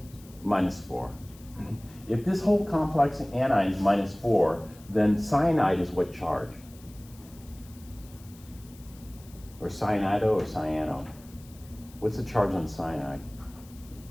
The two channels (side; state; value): left; noise; hiss, 24 dB below the sound